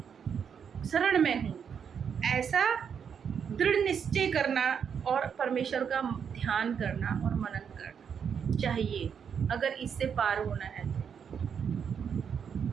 शरण में हूँ। ऐसा दृढ़ निश्चय करना और परमेश्वर का ध्यान करना और मनन करना चाहिए, अगर इससे पार होना है तो।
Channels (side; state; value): left; quieter; 7.3 dB